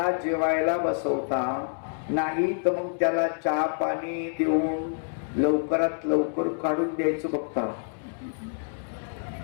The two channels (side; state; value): right; silent; 60 dB below the other